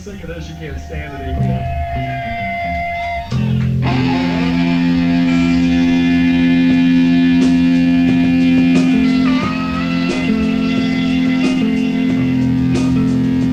of this you can't stand it anymore.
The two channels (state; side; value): identical; both; correlation 1.00